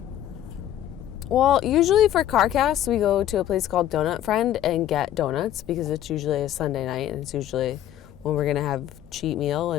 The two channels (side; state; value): right; quieter; 11.9 dB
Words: Well, usually for Carcast, we go to a place called Donut Friend and get donuts because it's usually a Sunday night, and it's usually when we're gonna have cheat meal